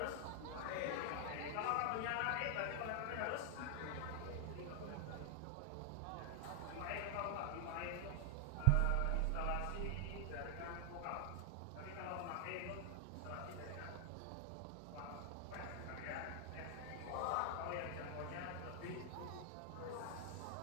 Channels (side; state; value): both; different; correlation 0.00